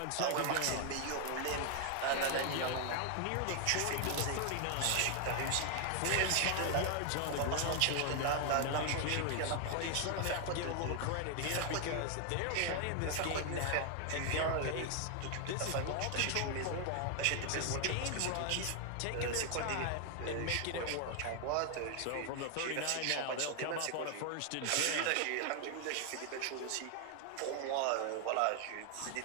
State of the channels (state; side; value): different; both; correlation 0.00